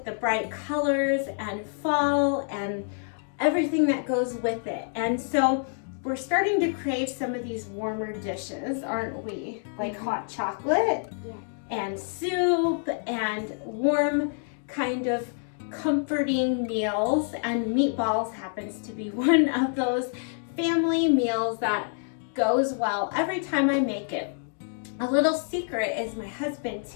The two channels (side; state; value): right; silent; 60 dB below the other